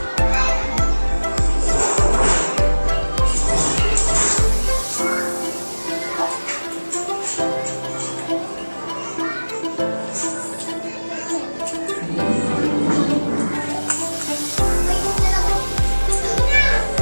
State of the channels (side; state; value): both; inverted; correlation -1.00